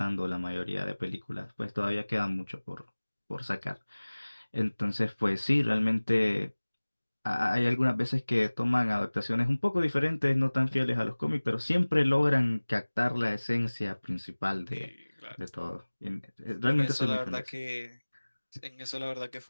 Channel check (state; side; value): inverted; both; correlation -1.00